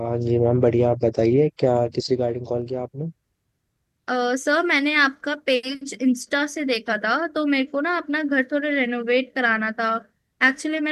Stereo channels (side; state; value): both; identical; correlation 1.00